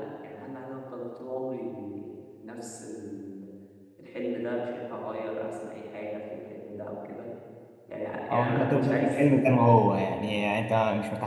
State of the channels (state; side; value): identical; both; correlation 1.00